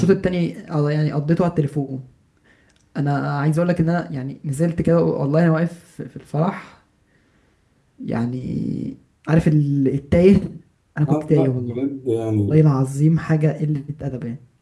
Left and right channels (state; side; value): identical; both; correlation 1.00